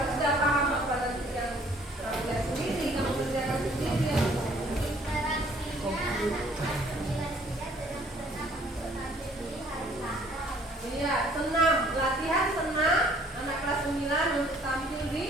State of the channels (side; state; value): both; normal; correlation 0.59